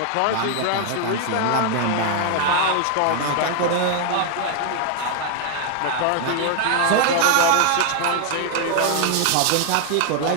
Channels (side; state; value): both; different; correlation 0.00